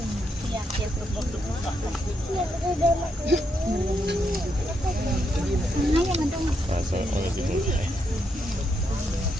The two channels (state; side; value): normal; both; correlation 0.79